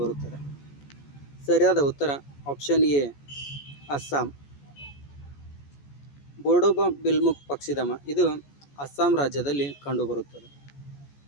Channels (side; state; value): right; late; 14 ms